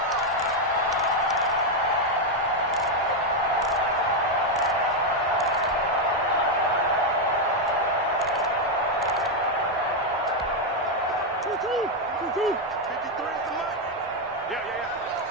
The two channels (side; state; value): both; normal; correlation 0.03